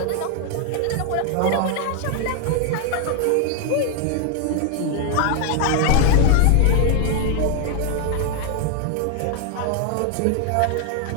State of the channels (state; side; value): different; both; correlation 0.00